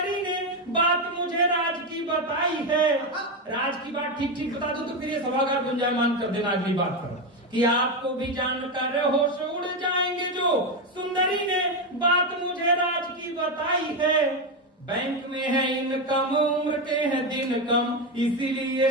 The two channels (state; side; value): normal; both; correlation 0.10